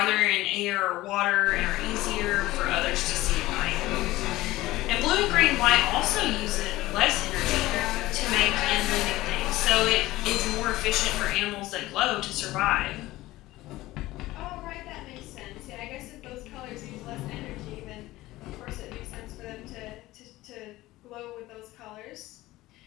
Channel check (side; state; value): right; quieter; 17.6 dB